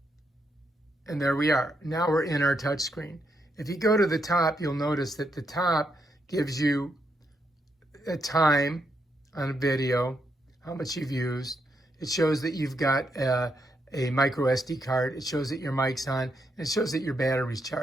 And there we are. Now we're in our touch screen. If you go to the top, you'll notice that the top gives you a time on a video, how much you've used. It shows that you've got a micro SD card. It shows that your mic's on, and it shows that your battery's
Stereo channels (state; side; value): normal; both; correlation 0.79